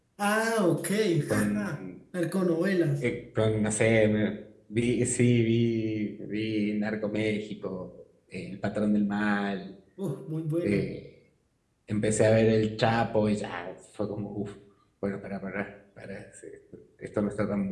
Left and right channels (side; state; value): both; identical; correlation 1.00